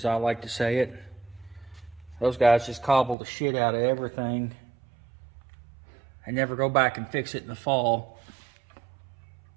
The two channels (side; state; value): left; drops out; at 3.2 s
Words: I like to say it. Those guys just cobble the shit out of everything and never go back and fix it in the fall.